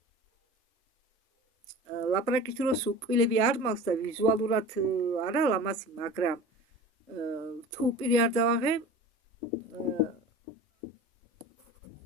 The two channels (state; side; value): normal; both; correlation 0.37